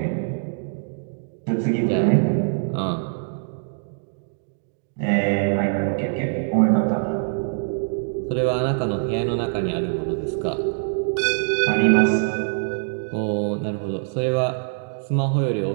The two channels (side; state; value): left; silent; digital silence